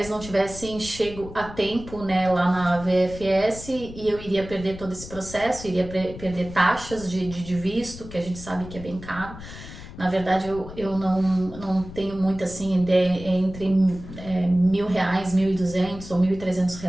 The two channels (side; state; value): left; noise; rumble, 14 dB below the sound